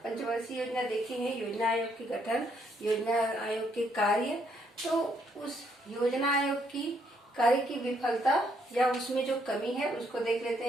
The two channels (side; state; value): both; normal; correlation 0.71